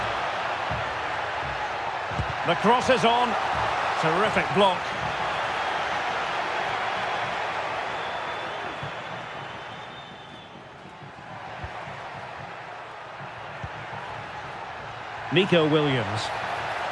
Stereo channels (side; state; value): both; identical; correlation 1.00